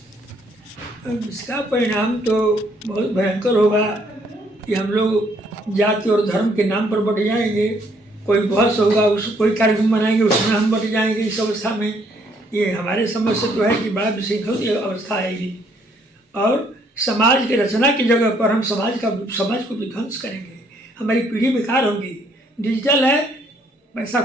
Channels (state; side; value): normal; both; correlation 0.67